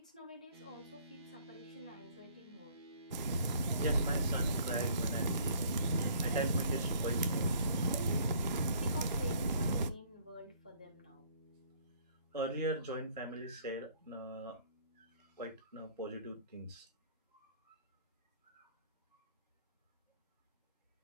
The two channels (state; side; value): inverted; both; correlation -0.59